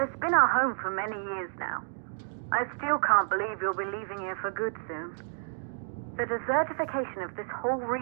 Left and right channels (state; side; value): silent; left; digital silence